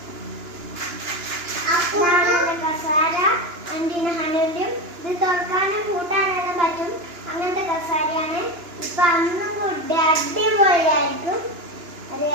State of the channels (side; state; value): left; late; 2.9 ms